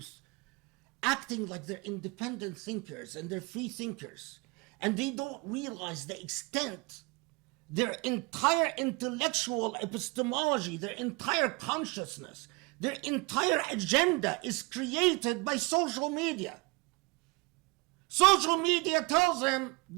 acting like they're independent thinkers and they're free thinkers, and they don't realize the extent their entire intellectual epistemology, their entire consciousness, their entire agenda is created by social media. Social media tells them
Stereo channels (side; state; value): left; quieter; 27.0 dB